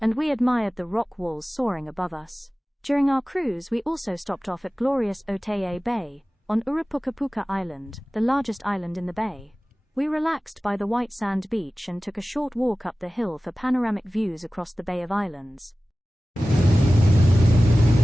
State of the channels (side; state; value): both; normal; correlation 0.97